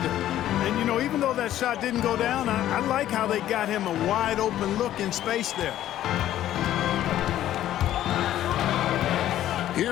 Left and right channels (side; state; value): right; quieter; 12.6 dB